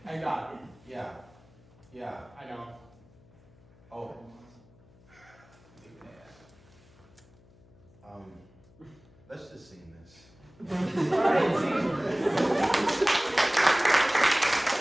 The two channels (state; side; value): noise; left; hum, 27 dB below the sound